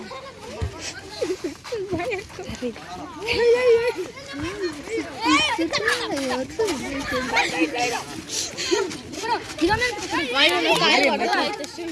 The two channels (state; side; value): identical; both; correlation 1.00